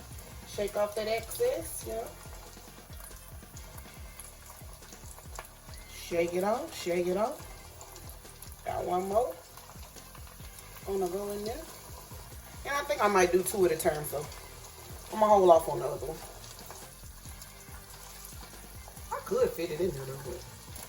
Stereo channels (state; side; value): identical; both; correlation 1.00